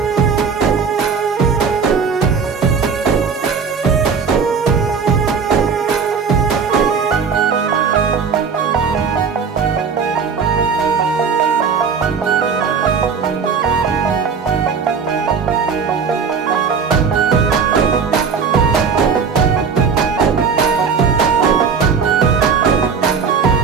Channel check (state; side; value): quieter; left; 5.9 dB